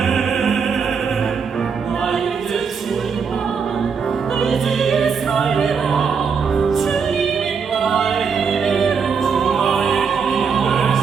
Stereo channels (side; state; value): left; quieter; 6.0 dB